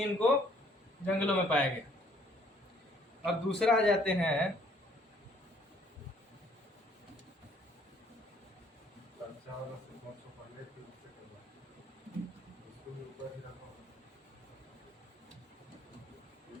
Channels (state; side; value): normal; both; correlation 0.62